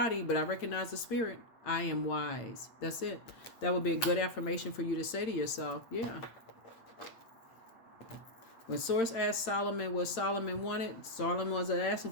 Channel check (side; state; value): right; late; 8.8 ms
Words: but I recognize the spirit. I am wise. That's it. That would be a good affirmation for you to say to yourself. Yeah. When Source asked Solomon what Solomon wanted, Solomon wasn't